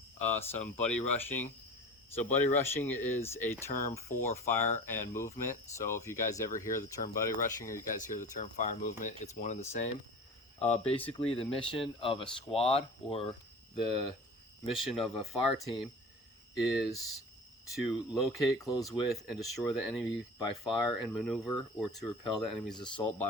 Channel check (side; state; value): both; normal; correlation 0.36